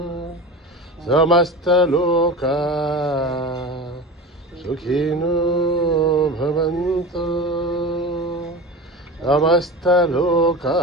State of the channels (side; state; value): both; normal; correlation 0.30